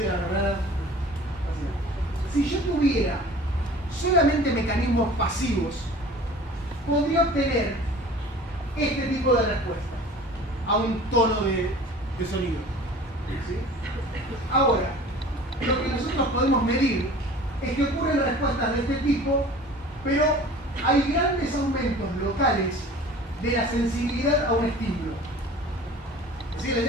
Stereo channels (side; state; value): both; normal; correlation 0.43